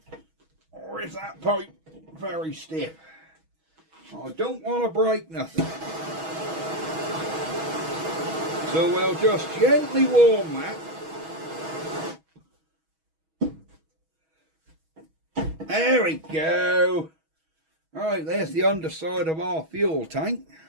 Or is that pipe very stiff? I don't want to break nothing. So we'll just gently warm that. There we go. Right, there's the underside of our fuel tank.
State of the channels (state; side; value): late; left; 6.2 ms